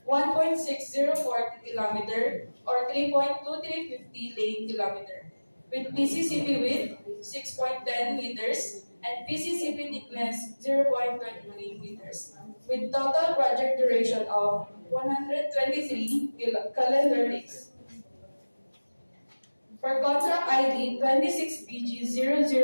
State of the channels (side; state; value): both; inverted; correlation -1.00